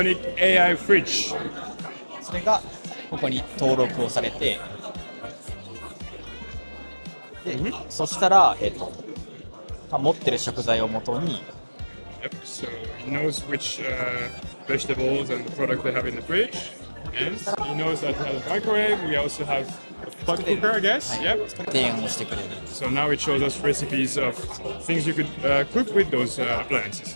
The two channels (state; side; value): inverted; both; correlation -1.00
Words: AI fridge. それがここに登録をされて、で、そしたら、持ってる食材をもとに、 Yep, so he knows which vegetables and product they have in the fridge. And he knows that we have a microwave. We also have a pot cooker, I guess. Yep. 提案をしてくれる。 So now it shows us recipes of things you could cook with those appliances.